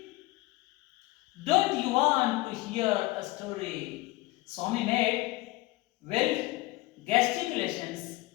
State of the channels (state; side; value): quieter; right; 20.5 dB